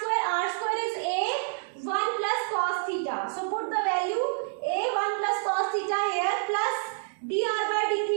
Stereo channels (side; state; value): left; silent; digital silence